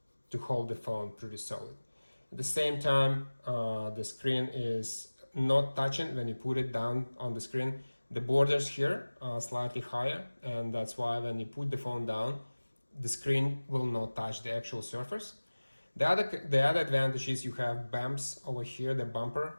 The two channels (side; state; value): both; inverted; correlation -1.00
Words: to hold the phone pretty solid. At the same time, the screen is not touching when you put it down on the screen. The borders here are slightly higher, and that's why when you put the phone down, the screen will not touch the actual surface. The other advantage is you have bumps over here, the bumper